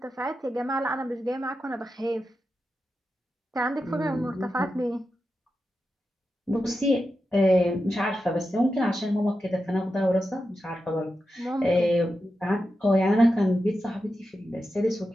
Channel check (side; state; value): both; normal; correlation 0.90